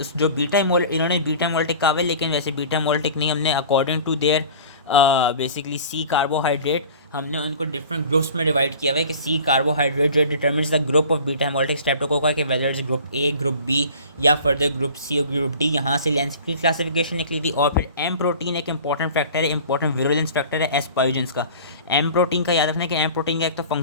जो बीटा इन्होंने बीटा मोल्टिक कहा है, लेकिन वैसे बीटा मोल्टिक नहीं, हमने according to their basically C carbohydrate, हमने उनको डिफरेंट ग्रुप्स में डिवाइड किया हुआ है कि सी कार्बोहाइड्रेट जो determines the group of beta hemolytic streptococci के whether is group A, group B या फर्दर ग्रुप सी और ग्रुप डी। यहाँ से लैंसफील्ड की क्लासिफिकेशन निकली थी। और फिर एम प्रोटीन एक इंपॉर्टेंट फैक्टर है, इंपॉर्टेंट विरुलेंस फैक्टर है एस पायोजेंस का। एम प्रोटीन का याद रखना है कि एम प्रोटीन का एक तो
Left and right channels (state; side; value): inverted; both; correlation -0.42